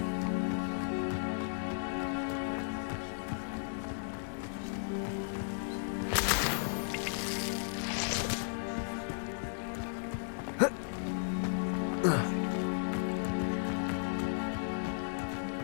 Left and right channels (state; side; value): silent; right; digital silence